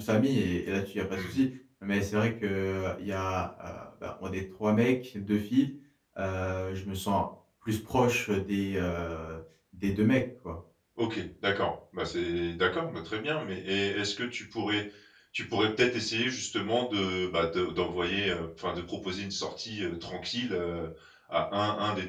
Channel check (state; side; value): identical; both; correlation 1.00